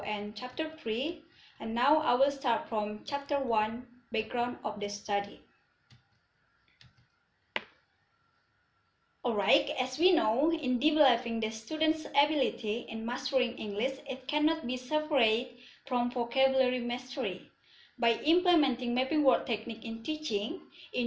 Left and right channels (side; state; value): both; identical; correlation 1.00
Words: and Chapter 3. And now I will start from Chapter 1, Background of the Study. Alright, as we know, in developing the student's ability in mastering English, it cannot be separated from vocabulary mastery. By implementing mapping word technique in teaching,